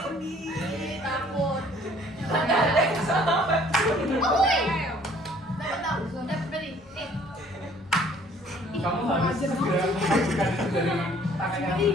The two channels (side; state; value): both; normal; correlation 0.57